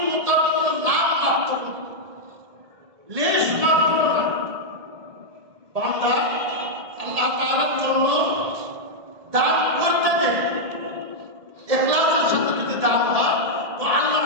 কোনো নাম মাত্র নেই, লেশ মাত্র না। বান্দা আল্লাহ তাআলার জন্য দান করতে দেন, ইখলাসের সাথে যদি দান হয় তো আল্লাহ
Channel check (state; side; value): late; left; 1.7 ms